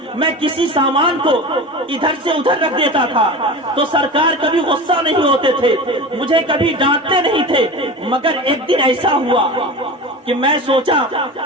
میں کسی سامان کو ادھر سے ادھر رکھ دیتا تھا تو سرکار کبھی غصہ نہیں ہوتے تھے، مجھے کبھی ڈانٹتے نہیں تھے. مگر ایک دن ایسا ہوا کہ میں سوچا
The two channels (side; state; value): both; normal; correlation 0.30